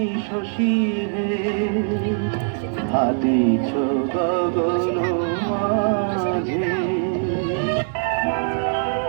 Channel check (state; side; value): silent; left; digital silence